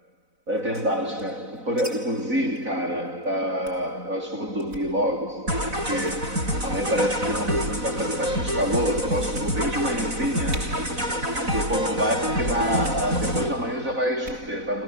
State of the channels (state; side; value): late; left; 4.0 ms